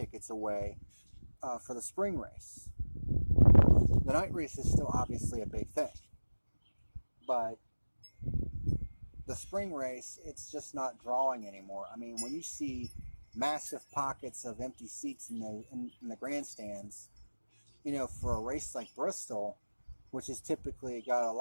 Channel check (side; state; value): both; inverted; correlation -1.00